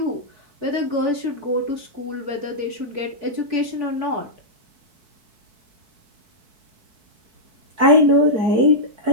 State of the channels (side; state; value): left; late; 4.6 ms